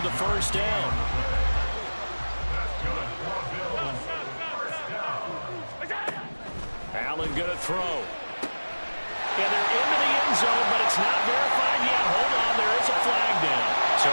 the first down. Allen gonna throw. And they're into the end zone, but it's not verified yet. Hold on, there is a flag down. So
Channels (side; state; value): both; inverted; correlation -1.00